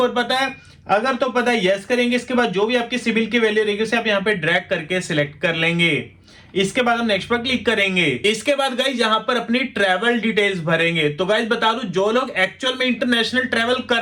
पता है, अगर तो पता है यस करेंगे। इसके बाद जो भी आपकी सिबिल की वैल्यू रहेगी उसे आप यहाँ पे ड्रैग करके सिलेक्ट कर लेंगे। इसके बाद हम नेक्स्ट पर क्लिक करेंगे। इसके बाद गाइज यहाँ पर अपनी ट्रैवल डिटेल्स भरेंगे। तो गाइज बता दूं जो लोग एक्चुअल में इंटरनेशनल ट्रैवल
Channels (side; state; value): both; identical; correlation 1.00